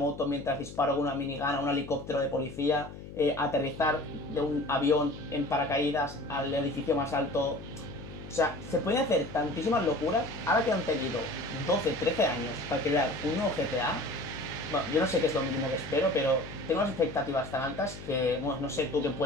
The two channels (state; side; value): noise; left; hum, 13 dB below the sound